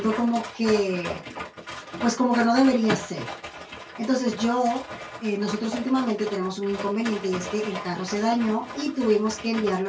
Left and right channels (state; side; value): identical; both; correlation 1.00